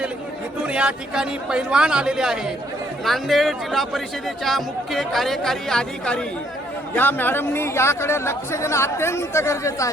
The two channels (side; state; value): both; normal; correlation 0.68